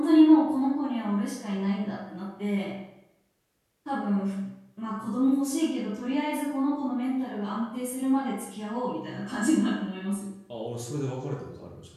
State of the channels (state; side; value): identical; both; correlation 1.00